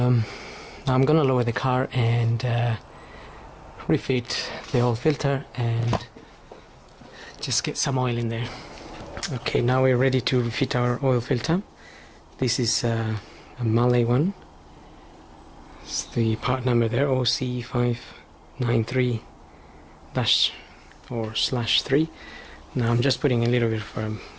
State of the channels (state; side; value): identical; both; correlation 1.00